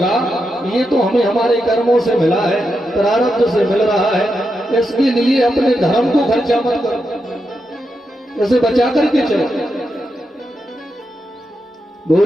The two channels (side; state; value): both; normal; correlation 0.86